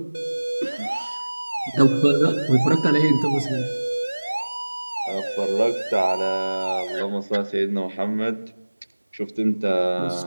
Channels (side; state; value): both; inverted; correlation -1.00